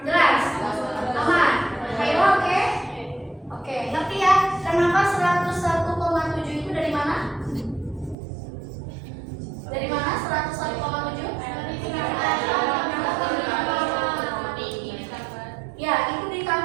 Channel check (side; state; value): left; drops out; at 8.2 s